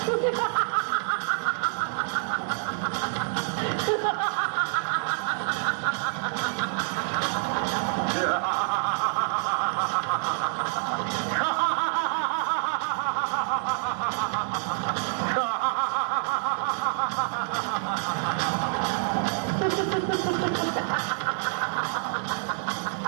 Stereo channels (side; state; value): left; silent; 60 dB below the other